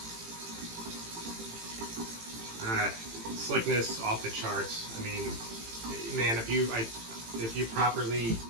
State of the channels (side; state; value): left; late; 18 ms